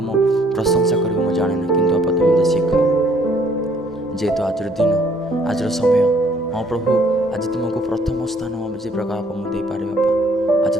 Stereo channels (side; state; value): both; normal; correlation 0.63